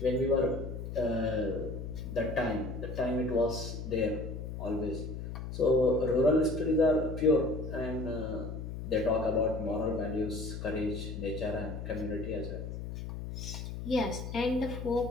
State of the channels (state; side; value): noise; left; hum, 7 dB below the sound